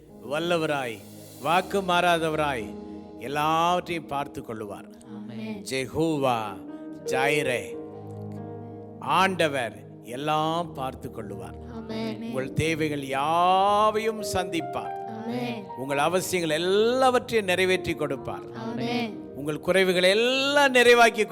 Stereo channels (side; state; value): both; identical; correlation 1.00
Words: வல்லவராய், வாக்கு மாறாதவராய் எல்லாவற்றையும் பார்த்து கொள்ளுவார். ஜெகோவா ஜாயிரே, ஆண்டவர் எல்லாம் பார்த்து கொள்ளுவார். உங்கள் தேவைகள் யாவையும் சந்திப்பார். உங்கள் அவசியங்கள் எல்லாவற்றையும் நிறைவேற்றி கொடுப்பார். உங்கள் குறைவுகளை எல்லாம் நிறைவாக்கி